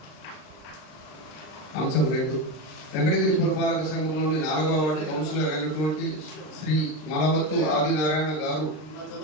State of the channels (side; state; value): right; late; 39 ms